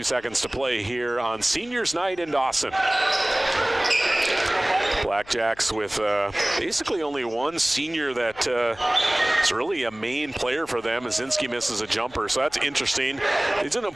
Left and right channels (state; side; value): noise; left; hum, 25 dB below the sound